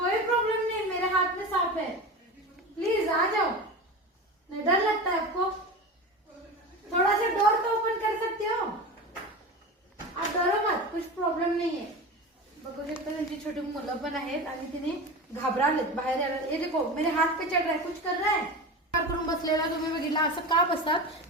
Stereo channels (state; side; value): normal; both; correlation 0.28